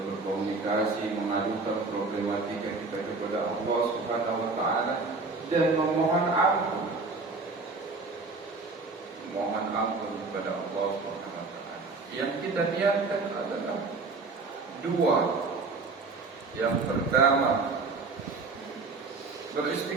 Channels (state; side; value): quieter; left; 3.9 dB